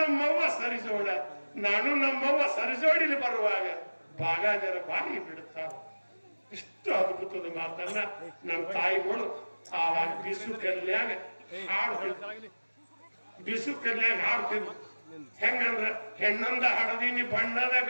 ನಮ್ಮವ್ವ ಸರಿಜೋಡಿಲಿ ಬರುವಾಗ ಬಾಗಾಜರ ಬಾಯಿ ಬಿಡುತ್ತಾವ. ಇಷ್ಟು ಅದ್ಭುತದ ಮಾತನ್ನ ನಮ್ಮ ತಾಯಿಗಳು ಆವಾಗ ಬಿಸು ಕಲ್ಯಾಗ ಹಾಡ್ತಿದ್ರು. ಹೆಂಗಂದ್ರ ಹೆಣ್ಣೊಂದ ಹಡದಿನಿ ಬಣ್ಣದ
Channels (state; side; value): inverted; both; correlation -1.00